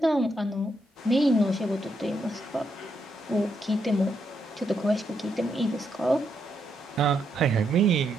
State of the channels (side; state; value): both; normal; correlation 0.79